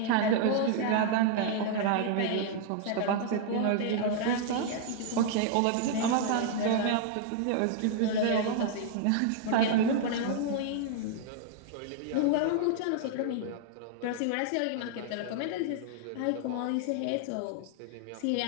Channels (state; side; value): different; both; correlation -0.01